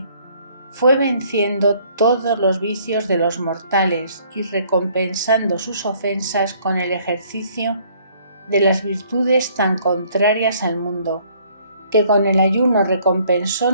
fue venciendo todos los vicios de los mortales y recompensando sus ofensas con el ejercicio de las virtudes tan contrarias al mundo, que con el ayuno recompensó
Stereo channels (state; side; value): inverted; both; correlation -0.61